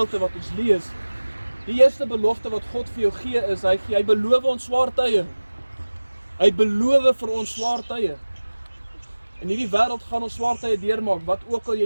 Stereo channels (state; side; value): inverted; both; correlation -1.00